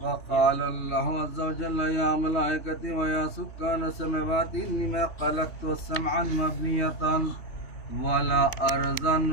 وقال الله عز وجل يا ملائكتي ويا سكان السماوات إني ما خلقت سمعا مبنية ولا أرضا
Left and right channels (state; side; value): late; right; 3.1 ms